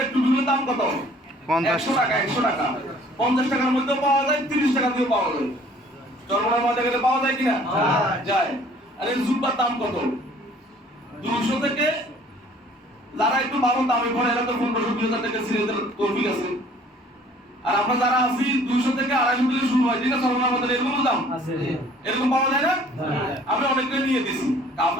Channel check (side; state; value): both; normal; correlation 0.55